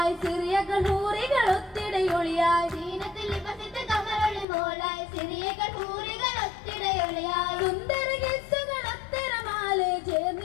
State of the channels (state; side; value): drops out; right; at 4.5 s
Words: സിറിയകൾ ഹൂറികൾ ഒത്തിടയൊളിയായി സീനത്തിൽ ബസത്ത് കമറൊളി മോളായി സിറിയകൾ ഹൂറികൾ ഒത്തിടയൊളിയായി സുന്ദര ഗിസുകൾ ഒത്തിരമാലെ